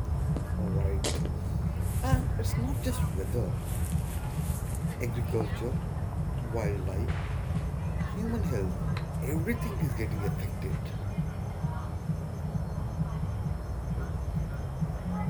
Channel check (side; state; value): both; identical; correlation 1.00